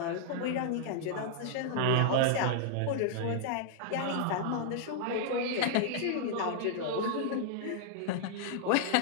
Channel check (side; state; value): both; different; correlation -0.01